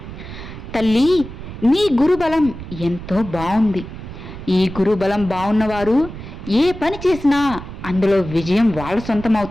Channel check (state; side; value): noise; right; rumble, 11 dB below the sound